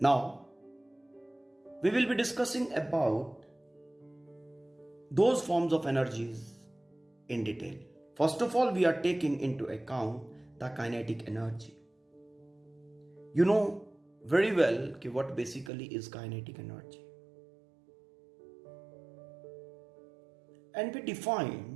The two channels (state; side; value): drops out; left; at 15.7 s